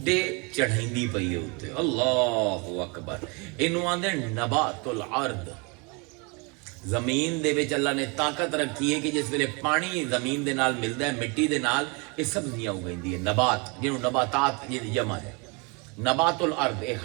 چڑھائندی پئی ہے اوتے. اللہ اکبر. انہوں آندے نبات الارض, زمین دے وچ اللہ نے طاقت رکھی ہے کہ جس ویلے پانی زمین دے نال ملدا ہے, مٹی دے نال, یہ سبزیاں اگائندی ہے. نبات جنوں نباتات یہ جمع ہے, نبات الارض, اے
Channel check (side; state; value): left; quieter; 30.7 dB